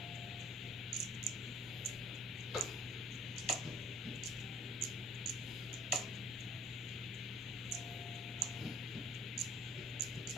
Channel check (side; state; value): both; normal; correlation 0.53